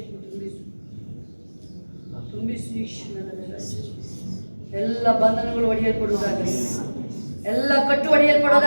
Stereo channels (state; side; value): inverted; both; correlation -1.00